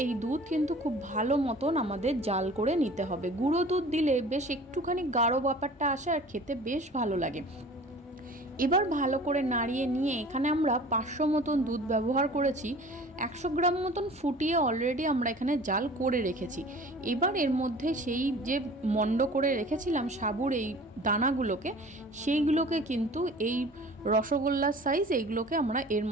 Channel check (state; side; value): normal; both; correlation 0.44